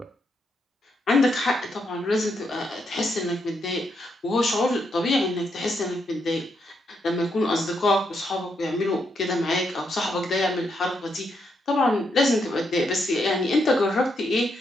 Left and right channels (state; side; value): normal; both; correlation 0.79